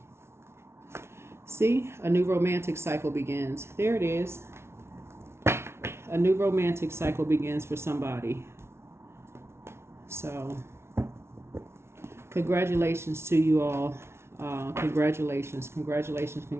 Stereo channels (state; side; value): late; left; 0.12 ms